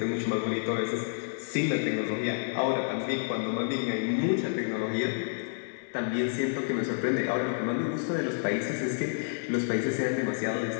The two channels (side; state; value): right; silent; digital silence